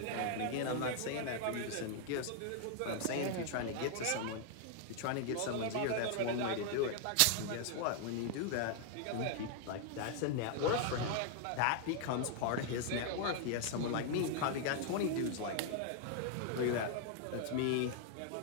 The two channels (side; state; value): both; different; correlation 0.00